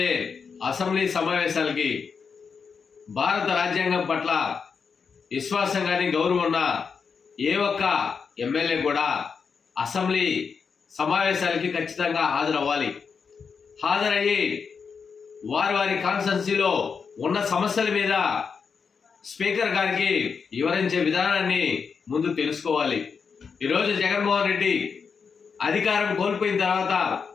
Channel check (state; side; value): quieter; right; 5.8 dB